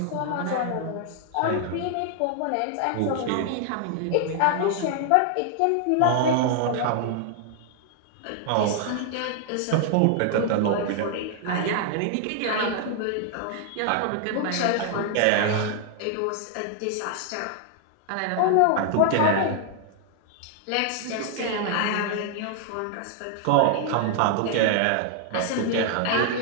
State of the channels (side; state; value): both; different; correlation 0.00